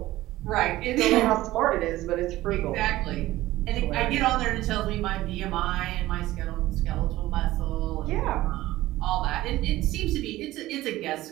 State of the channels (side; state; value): left; quieter; 16.5 dB